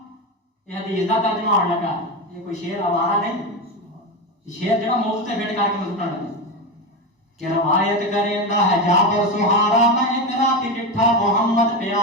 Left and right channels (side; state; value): both; normal; correlation 0.16